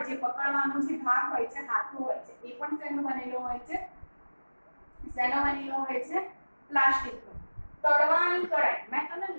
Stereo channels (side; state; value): both; inverted; correlation -1.00